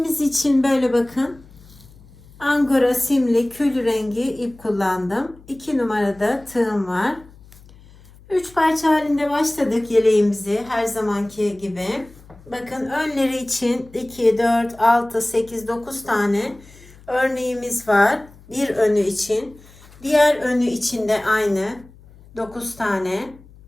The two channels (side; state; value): left; noise; hum, 23 dB below the sound